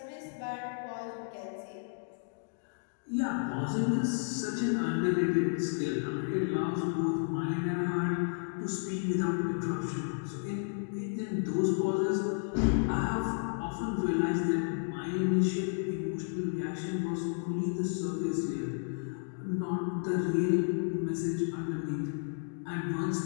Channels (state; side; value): silent; right; digital silence